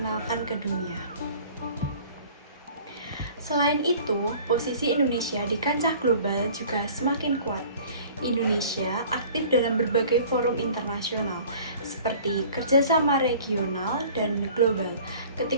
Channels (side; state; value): both; inverted; correlation -0.47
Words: ke dunia. Selain itu, posisi Indonesia di kancah global juga semakin kuat. Indonesia aktif dalam berbagai forum internasional, seperti kerjasama regional dan global.